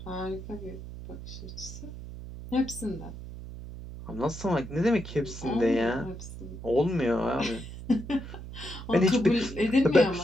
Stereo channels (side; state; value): right; noise; hum, 11 dB below the sound